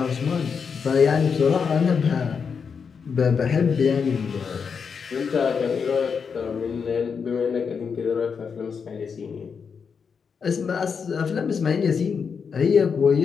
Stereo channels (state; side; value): quieter; right; 6.1 dB